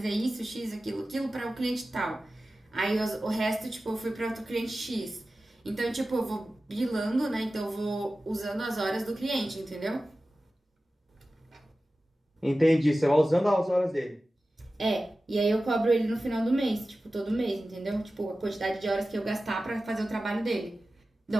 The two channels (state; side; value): normal; both; correlation 0.95